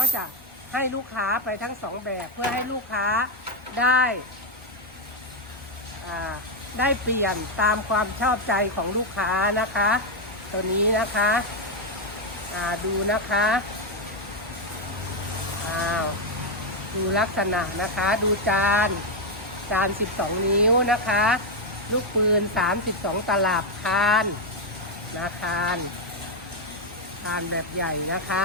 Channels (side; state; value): both; normal; correlation 0.03